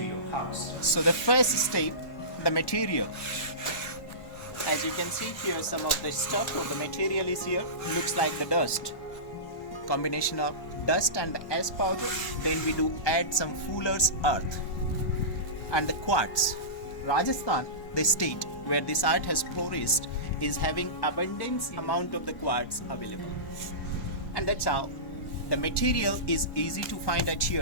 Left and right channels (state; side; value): late; right; 1.1 ms